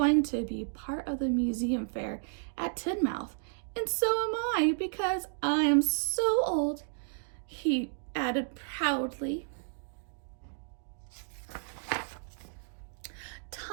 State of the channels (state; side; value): silent; left; digital silence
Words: to be part of the museum fair at Tidmouth. And so am I, because I am so old," he added proudly.